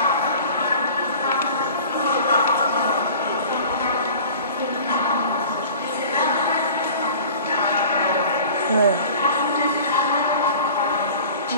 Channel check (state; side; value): inverted; both; correlation -0.43